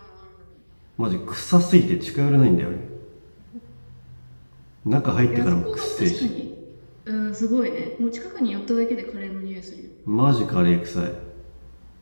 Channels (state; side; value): inverted; both; correlation -1.00